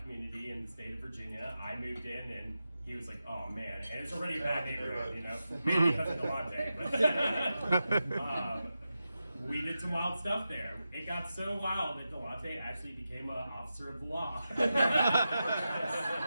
community in the state of Virginia. I moved in and he was like, oh man, and it's already a bad neighborhood, you know, maybe because of Delante. But, we did some wild stuff there. It got so wild that Delante actually became an officer of the law. So all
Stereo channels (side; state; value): both; inverted; correlation -0.91